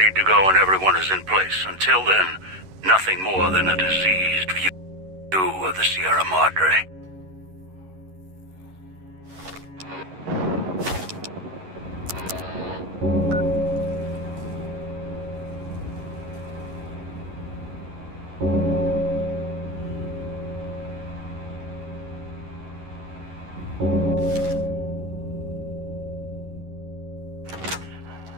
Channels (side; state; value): left; late; 11 ms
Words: to go when everyone is in place. Until then, nothing more than a diseased view of the Sierra Madre.